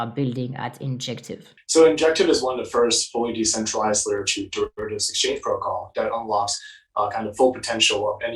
building at Injective? So Injective is one of the first fully decentralized layer 2 derivatives exchange protocol that unlocks kind of full potential of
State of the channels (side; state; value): both; identical; correlation 1.00